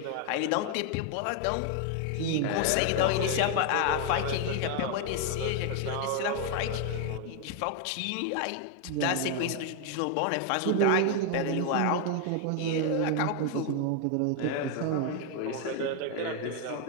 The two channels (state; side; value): different; both; correlation 0.01